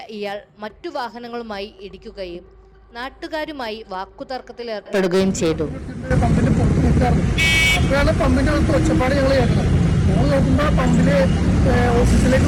ഇയാൾ മറ്റു വാഹനങ്ങളുമായി ഇടിക്കുകയും നാട്ടുകാരുമായി വാക്കുതർക്കത്തിലേർപ്പെടുകയും ചെയ്തു. പമ്പിന്റെ ഒച്ചപ്പാട് ഞങ്ങൾ കേൾക്കണം. ഞങ്ങൾ നോക്കുമ്പോൾ പമ്പില് ഓഫീസിലേക്ക്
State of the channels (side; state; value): both; identical; correlation 1.00